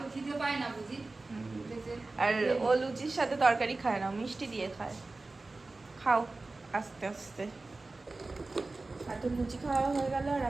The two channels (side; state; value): left; quieter; 3.3 dB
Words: খিদে পায় না বুঝি? আর ও লুচির সাথে তরকারি খায় না, মিষ্টি দিয়ে খায়। খাও আস্তে আস্তে। এত লুচি খাওয়া হয়ে গেল আর